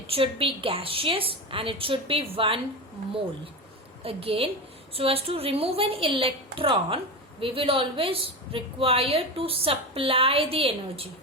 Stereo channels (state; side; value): normal; both; correlation 0.20